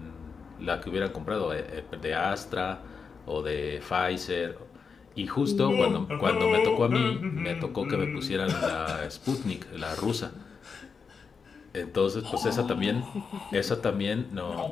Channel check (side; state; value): right; quieter; 5.5 dB